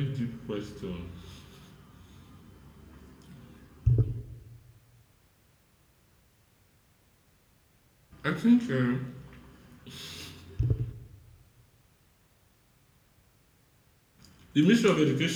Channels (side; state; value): both; identical; correlation 1.00